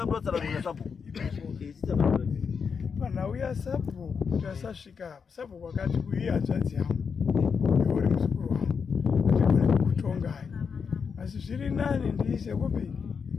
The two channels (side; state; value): right; quieter; 6.0 dB